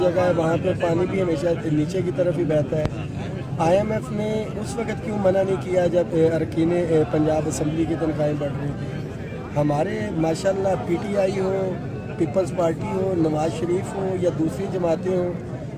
है वहाँ पर पानी भी हमेशा नीचे की तरफ ही बहता है। IMF ने उस वक़्त क्यों मना नहीं किया जब अरकान पंजाब असम्बली की तनख्वाहें बढ़ रही थी? हमारे माशाल्लाह PTI हो, पीपल्स पार्टी हो, नवाज शरीफ हो या दूसरी जमातें हों,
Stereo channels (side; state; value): both; identical; correlation 1.00